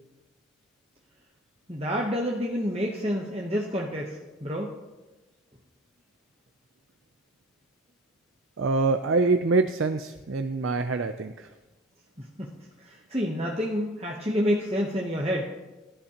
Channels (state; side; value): normal; both; correlation 0.38